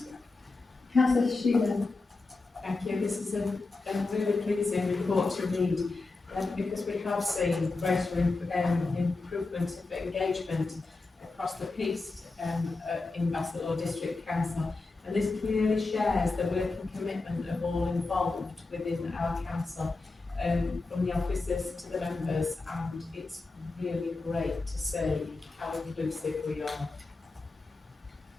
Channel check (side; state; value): right; quieter; 3.6 dB